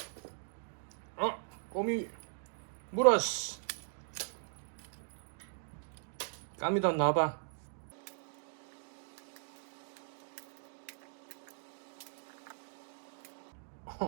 꼬미 물었어. 까미도 나와봐.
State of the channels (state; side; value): silent; left; digital silence